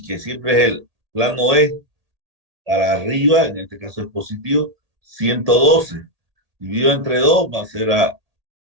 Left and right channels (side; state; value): left; late; 1.8 ms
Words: que siempre es el plano E, para arriba, en este caso es positivo, 112. Dividido entre 2 va a ser a